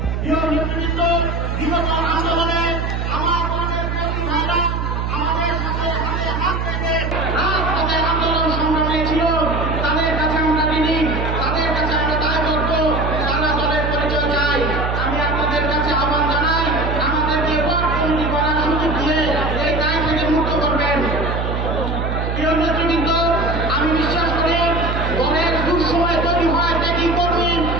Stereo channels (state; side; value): noise; right; hum, 2 dB below the sound